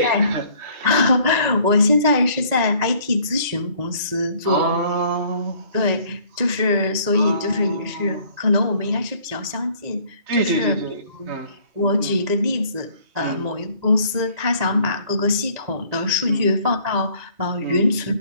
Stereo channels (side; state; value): left; late; 1.9 ms